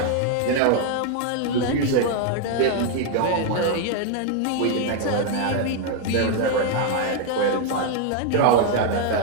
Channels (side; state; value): both; different; correlation 0.00